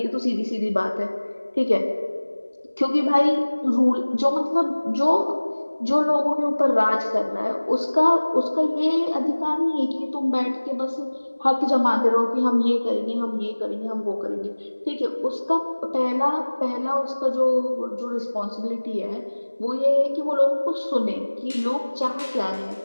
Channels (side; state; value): both; inverted; correlation -1.00